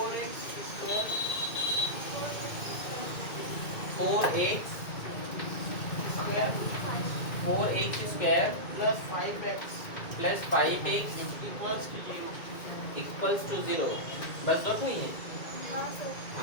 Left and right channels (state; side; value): late; right; 2.2 ms